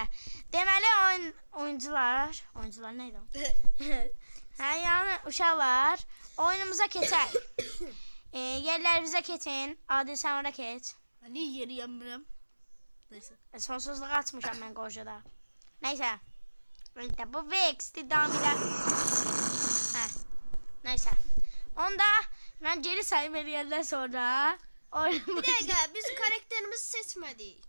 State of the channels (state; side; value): inverted; both; correlation -1.00